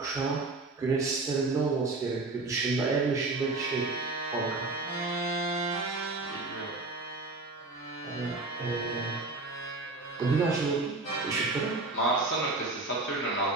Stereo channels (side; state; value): left; quieter; 3.3 dB